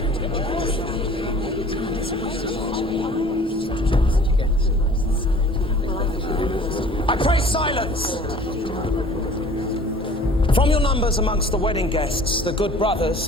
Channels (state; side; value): normal; both; correlation 0.48